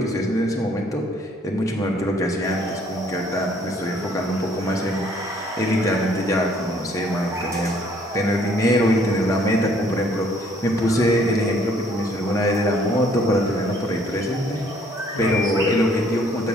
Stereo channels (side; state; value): both; normal; correlation 0.62